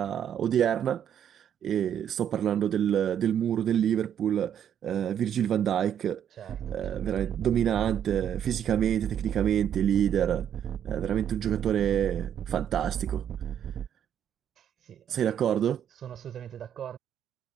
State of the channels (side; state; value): left; quieter; 9.4 dB